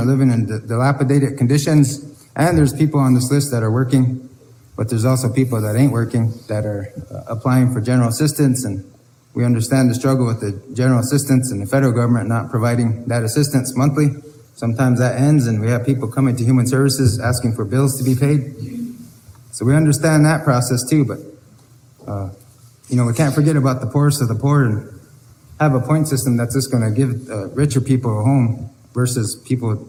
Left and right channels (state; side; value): identical; both; correlation 1.00